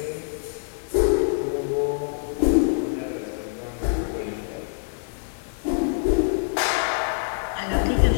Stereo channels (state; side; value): silent; right; digital silence